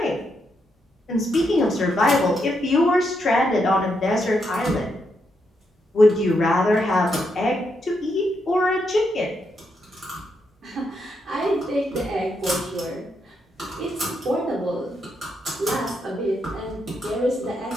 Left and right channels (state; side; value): normal; both; correlation 0.80